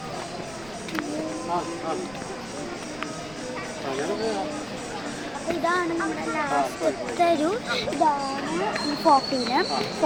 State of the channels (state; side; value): noise; right; rumble, 21 dB below the sound